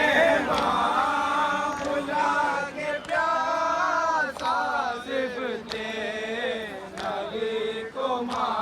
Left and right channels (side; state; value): both; identical; correlation 1.00